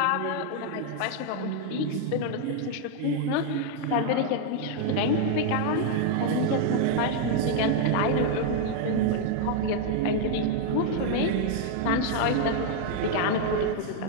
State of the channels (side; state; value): both; different; correlation 0.00